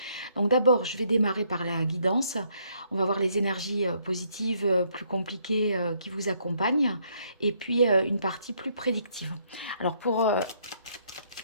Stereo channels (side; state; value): both; inverted; correlation -0.70